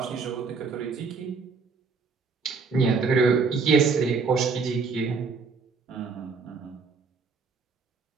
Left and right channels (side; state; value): left; quieter; 4.8 dB